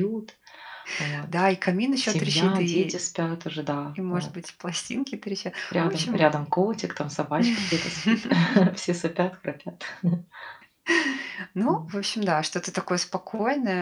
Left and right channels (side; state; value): both; identical; correlation 1.00